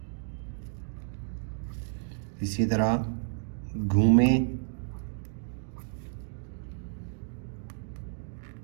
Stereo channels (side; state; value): left; silent; 57 dB below the other